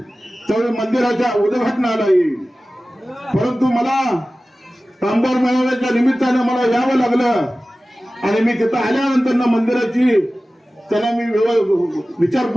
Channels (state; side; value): normal; both; correlation 0.96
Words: त्यावेळी मंदिराच्या उद्घाटनाला येईल. परंतु मला कामगार मेळाव्याच्या निमित्तानं मला यावं लागलं आणि मी तिथं आल्यानंतर मंदिराची त्यांना मी